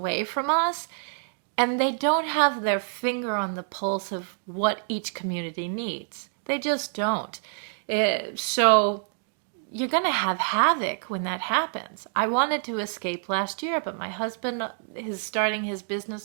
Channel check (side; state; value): left; silent; 57 dB below the other